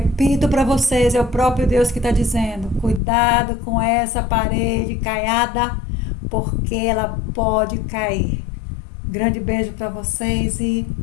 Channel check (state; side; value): drops out; right; at 3.0 s